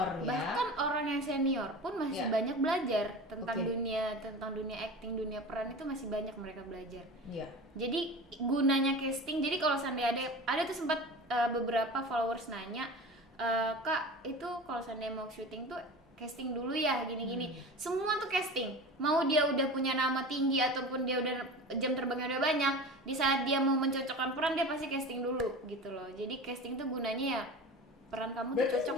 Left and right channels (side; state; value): both; normal; correlation 0.33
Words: ya. Bahkan orang yang senior pun masih Iya. banyak belajar tentang Oke. dunia acting, dunia peran itu masih banyak mereka belajar. Iya. Jadi gunanya casting, jadi kalau seandainya ada tuh sempat beberapa followers nanya, Kak itu kalau seandainya mau syuting tuh casting dulu ya gini-gini. Semua tuh casting, mau dia udah punya nama tinggi ataupun dia udah jam terbangnya udah banyak, di saat dia mau mencocokkan peran dia pasti casting dulu gitu loh. Jadi casting tuh gunanya ya peran kamu tuh Berarti cocok gak